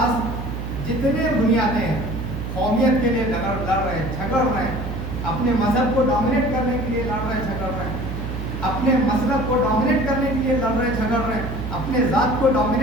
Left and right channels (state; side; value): noise; right; hum, 6 dB below the sound